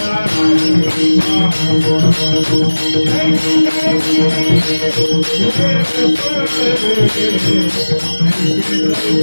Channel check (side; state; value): both; inverted; correlation -1.00